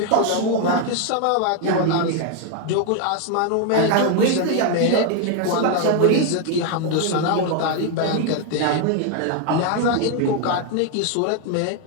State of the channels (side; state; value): both; different; correlation 0.00